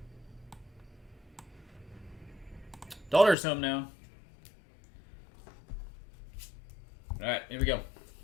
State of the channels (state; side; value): drops out; right; at 3.4 s